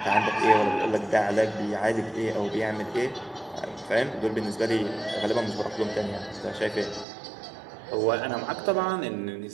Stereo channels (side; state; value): left; drops out; at 7.1 s